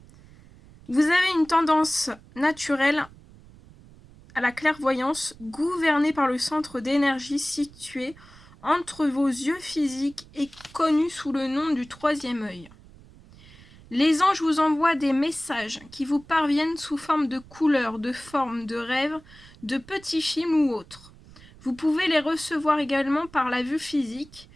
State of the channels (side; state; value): right; noise; rumble, 23 dB below the sound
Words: Vous avez une tendance naturelle à la clairvoyance, gouvernée par le centre d'énergie situé entre vos yeux physiques et connu sous le nom du troisième œil. Les anges vous envoient des messages qui vous parviennent sous forme de couleurs, de formes, de rêves, de petits films ou autres. Vous pouvez les recevoir également par la vue physique,